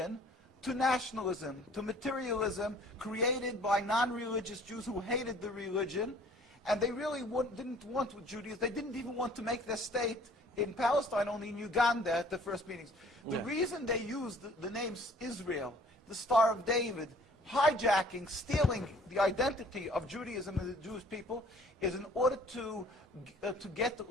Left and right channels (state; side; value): normal; both; correlation 0.54